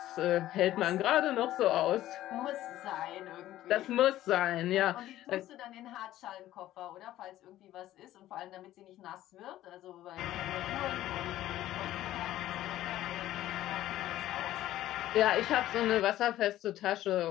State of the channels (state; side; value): quieter; right; 14.1 dB